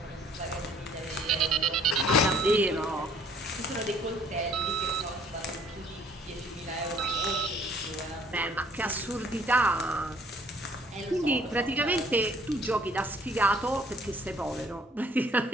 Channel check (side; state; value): both; normal; correlation 0.59